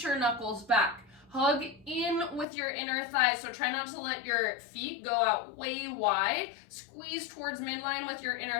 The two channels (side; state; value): right; drops out; at 2.5 s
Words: your knuckles back. Hug in with your inner thighs. So try not to let your feet go out way wide. Squeeze towards midline with your